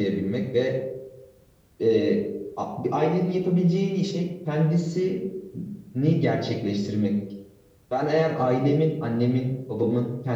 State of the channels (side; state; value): both; identical; correlation 1.00